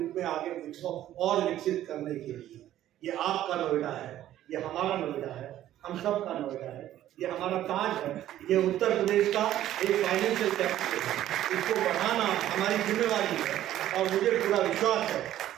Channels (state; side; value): quieter; left; 12.8 dB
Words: में आगे और विकसित करने के लिए, ये आपका नोएडा है, ये हमारा नोएडा है, हम सब का नोएडा है, ये हमारा ताज है, ये उत्तर प्रदेश का एक फाइनेंशियल कैपिटल है। इसको बढ़ाना हमारी जिम्मेवारी है और मुझे पूरा विश्वास है